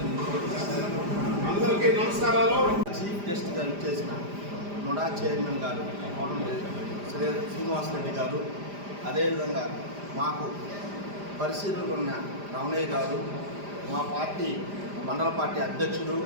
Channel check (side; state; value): left; late; 5.0 ms